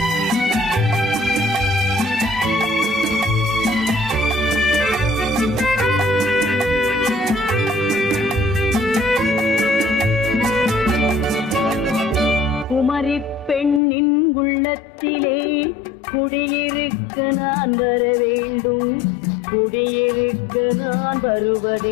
பெண்ணின் உள்ளத்திலே குடியிருக்க நான் வர வேண்டும். குடியிருக்க நான்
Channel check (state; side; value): drops out; right; at 13.8 s